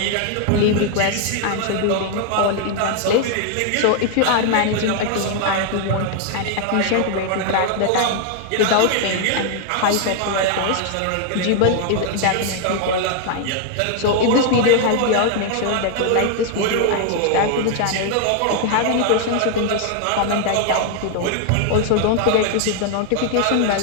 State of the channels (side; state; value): both; different; correlation 0.00